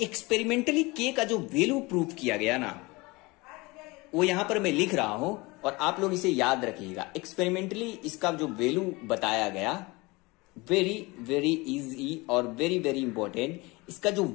एक्सपेरिमेंटली के का जो वैल्यू प्रूव किया गया ना, वो यहां पर मैं लिख रहा हूं और आप लोग इसे याद रखिएगा। एक्सपेरिमेंटली इसका जो वैल्यू बताया गया, वेरी वेरी इजी और वेरी वेरी इंपॉर्टेंट। इसका जो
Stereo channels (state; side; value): quieter; right; 24.0 dB